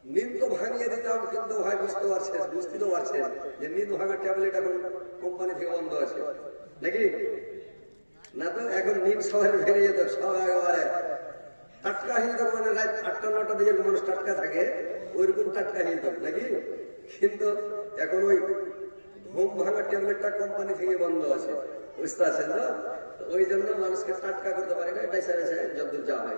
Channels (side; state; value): both; inverted; correlation -1.00